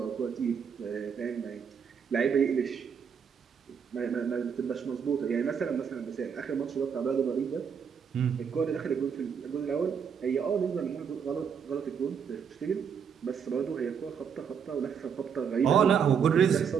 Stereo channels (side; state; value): left; quieter; 7.0 dB